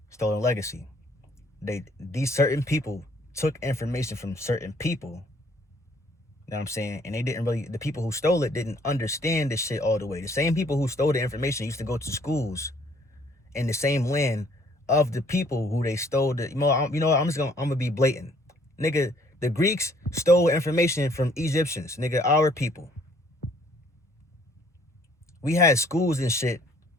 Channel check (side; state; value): both; normal; correlation 0.61